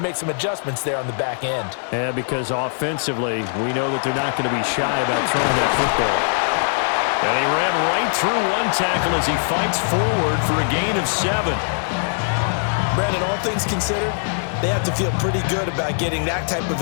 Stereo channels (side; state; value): right; silent; digital silence